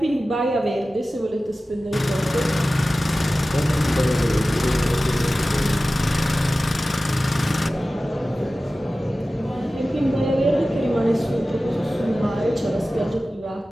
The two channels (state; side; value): normal; both; correlation 0.96